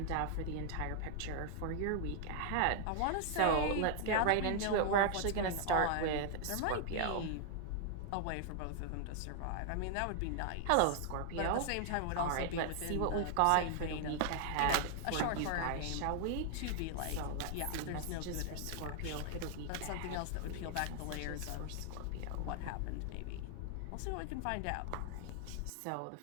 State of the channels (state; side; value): different; both; correlation 0.00